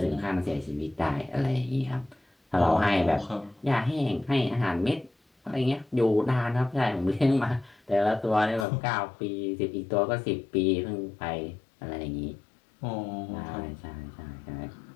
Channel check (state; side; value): drops out; right; at 8.7 s